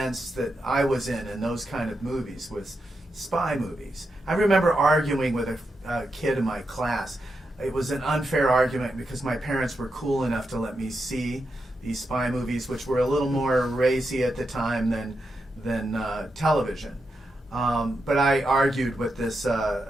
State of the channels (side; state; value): both; normal; correlation 0.86